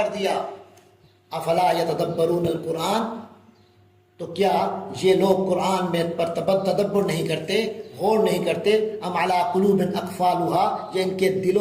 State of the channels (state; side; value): identical; both; correlation 1.00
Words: دیا۔ افلا یتدبرون القرآن، تو کیا یہ لوگ قرآن میں پر تدبر نہیں کرتے، غور نہیں کرتے؟ ام علی قلوب اقفالھا، یہ ان کے